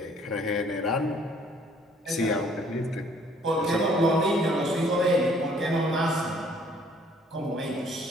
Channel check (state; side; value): normal; both; correlation 0.60